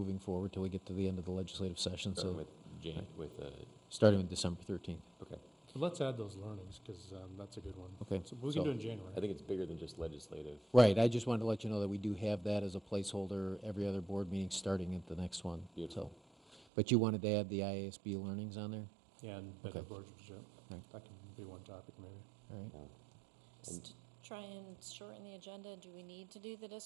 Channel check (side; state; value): left; drops out; at 16.6 s